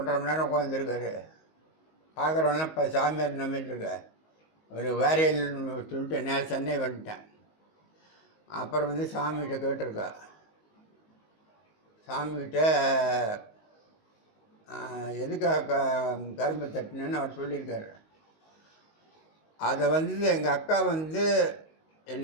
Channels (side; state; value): right; late; 19 ms